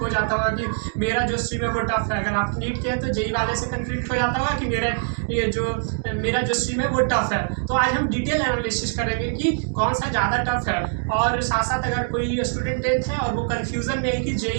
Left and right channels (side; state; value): left; silent; digital silence